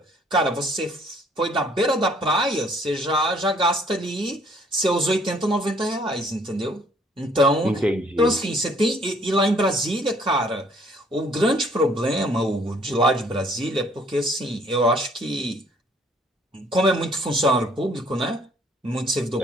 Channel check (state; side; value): normal; both; correlation 0.61